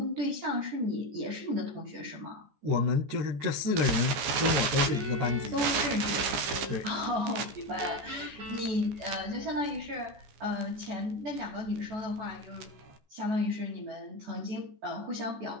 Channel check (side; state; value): left; late; 14 ms